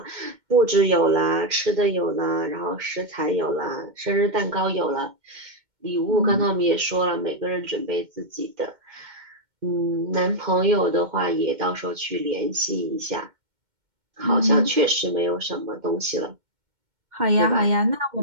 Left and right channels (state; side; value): late; left; 2.2 ms